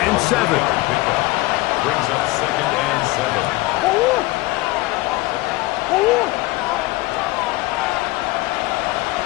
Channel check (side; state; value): right; quieter; 20.3 dB